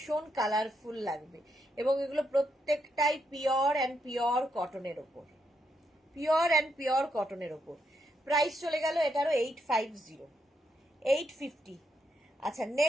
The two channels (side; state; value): both; normal; correlation 0.80